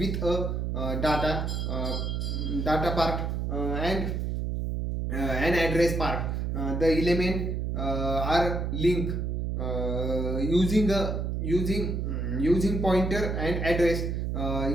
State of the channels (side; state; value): right; noise; hum, 1 dB below the sound